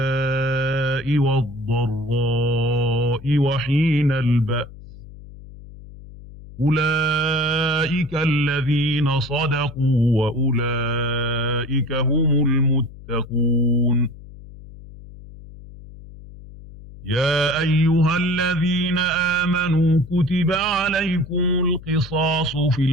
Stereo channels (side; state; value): left; noise; hum, 17 dB below the sound